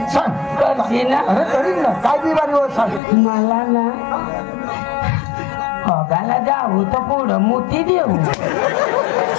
सांग करशील ना अरे करीन ना काय बिमारी होत सांग मला ना बघायला जाऊ तर पुढं मोती देऊ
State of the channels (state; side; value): drops out; right; at 3.0 s